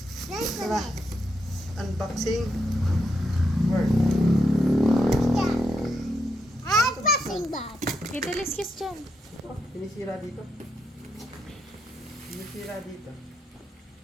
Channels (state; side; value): normal; both; correlation 0.81